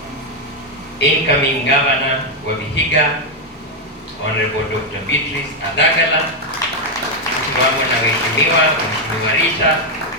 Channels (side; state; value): both; normal; correlation 0.02